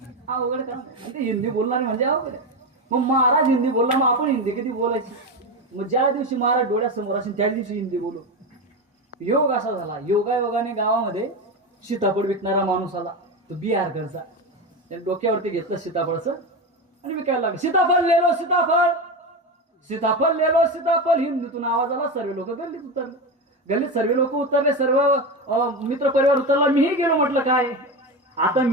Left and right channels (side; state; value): both; normal; correlation 0.18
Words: अवघड काम. ते हिंदी बोलणार म्हणजे अवघड. मग महाराज हिंदी बोलला, मग आपण हिंदी किती बोलायची. मग ज्या दिवशी महाराज डोळ्यासमोर असेल त्या दिवशी हिंदी बोलू. योग असा झाला. योगायोगाने गावामध्ये सीताफळ विकणारा माणूस आला. तो बिहारकडचा. त्याने डोक्यावरती घेतलं सीताफळचं आणि विकायला लागलं. सीताफळ ले लो, सीताफळ, सीताफळ ले लो, सीताफळ. हिंदीतून आवाज आला. सर्व लोक गल्लीत उतरले. गल्लीत सर्व लोक उतरले. सर्व मित्र परिवार उतरला. मीही गेलो. म्हटलं काय आता